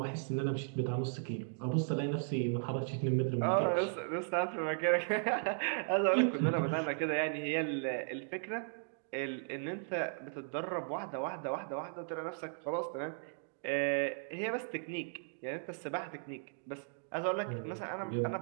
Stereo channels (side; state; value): left; silent; digital silence